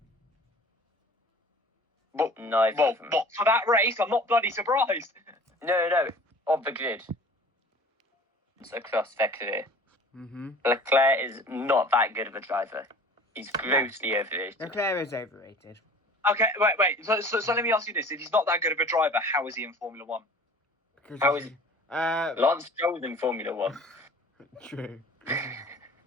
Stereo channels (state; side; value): normal; both; correlation 0.45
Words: But, Neither well, of them. but for that race, I'm not bloody surprised. No. Of the grid. It's across their career. Mm-hmm. Leclerc is not that good of a driver. He's grossly overrated. Leclerc is overrated. Okay, wait. So let me ask you this: if he's not that good of a driver, how is he in Formula One? Because How is Lance Stroll's in Formula 1. True. Then